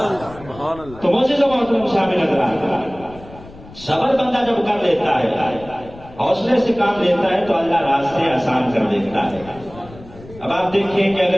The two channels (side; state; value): left; noise; rumble, 19 dB below the sound